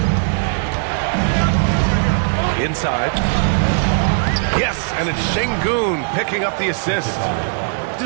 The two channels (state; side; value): silent; left; 67 dB below the other